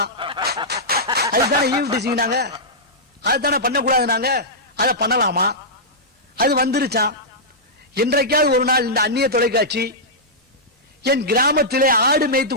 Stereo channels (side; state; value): both; normal; correlation -0.12